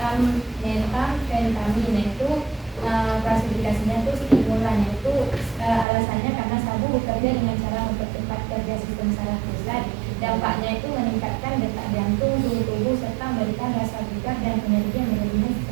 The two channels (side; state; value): left; drops out; at 5.9 s